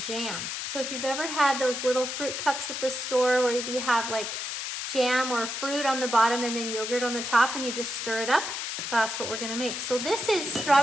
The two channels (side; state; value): left; noise; hiss, 4 dB below the sound